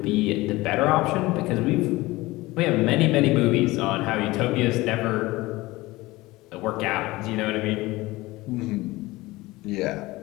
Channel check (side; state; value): right; quieter; 20.0 dB